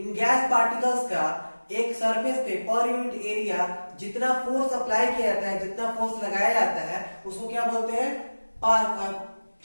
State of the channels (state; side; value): inverted; both; correlation -1.00